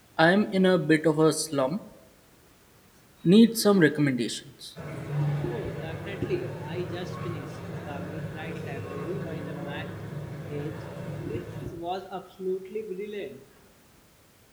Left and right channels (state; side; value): identical; both; correlation 1.00